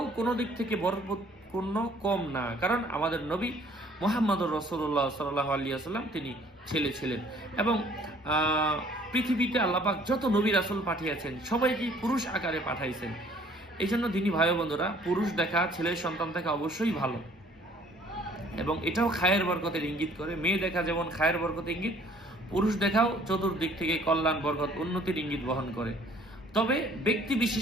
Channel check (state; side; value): normal; both; correlation 0.57